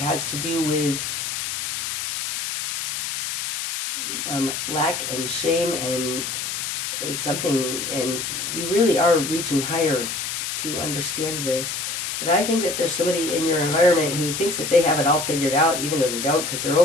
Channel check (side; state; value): left; noise; hiss, 3 dB below the sound